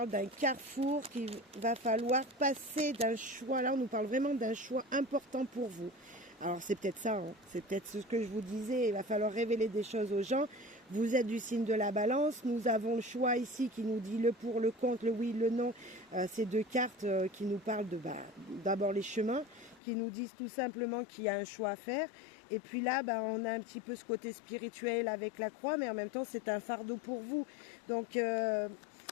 d'un carrefour qu'il va falloir passer, d'un choix. Là, on nous parle vraiment d'un choix important pour vous. Alors, c'est peut-être ça, hein. C'est peut-être ce que je vous disais. Il va falloir révéler des choses aux gens. Vous êtes du signe de la balance. Nous avons le choix ici qui nous dit le pour, le contre, le oui, le non. Ces deux cartes qui nous parlent de d'abord les chemins, qui nous disent tout simplement qu'il y a un choix à faire. Et puis là, on a un petit peu ce côté spirituel avec la croix, mais en même temps, c'est un fardeau pour vous. Donc, je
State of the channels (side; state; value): right; drops out; at 19.8 s